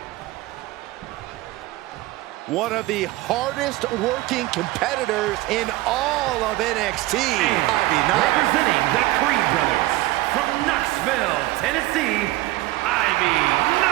One of the hardest working competitors in all of NXT, Ivy Nile. Representing the Creed brothers from Knoxville, Tennessee, Ivy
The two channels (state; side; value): quieter; left; 18.2 dB